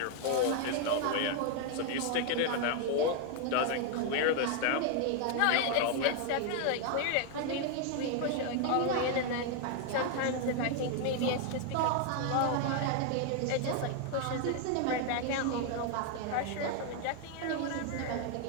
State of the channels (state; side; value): different; both; correlation 0.00